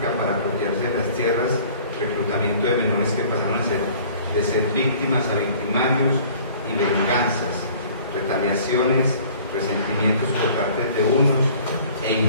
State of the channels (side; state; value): both; inverted; correlation -0.51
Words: para apropiarse de las tierras, reclutamiento de menores que pasaron de ser víctimas a victimarios, y venganzas, retaliaciones, resentimientos por parte de unos e